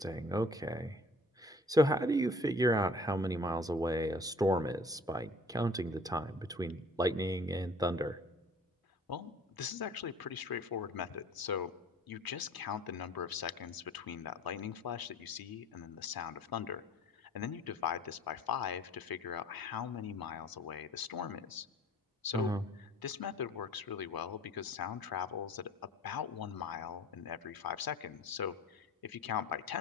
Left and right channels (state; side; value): normal; both; correlation 0.50